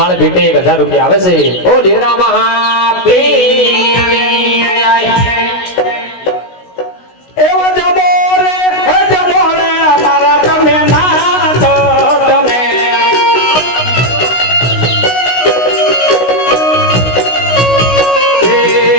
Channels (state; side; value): late; right; 16 ms